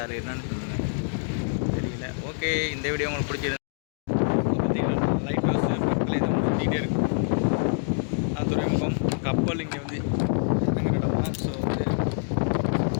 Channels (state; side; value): silent; right; digital silence